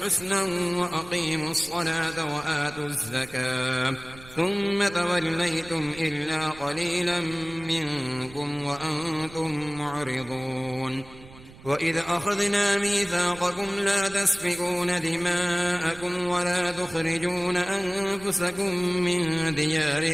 وأقيموا الصلاة وآتوا الزكاة ثم توليتم إلا قليلا منكم وأنتم معرضون وإذ أخذنا ميثاقكم لا تسفكون دماءكم ولا تخرجون أنفسكم من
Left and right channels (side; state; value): right; noise; rumble, 20 dB below the sound